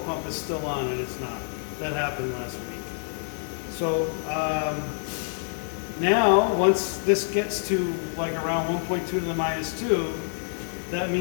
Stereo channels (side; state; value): right; silent; 60 dB below the other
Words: is still on, and it's not. That happened last week. So Now, once this gets to like around 1.2 to the minus 2, that